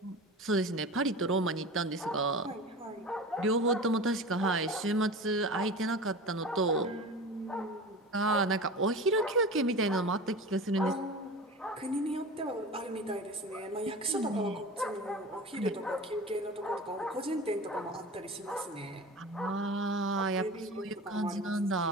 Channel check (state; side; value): normal; both; correlation 0.33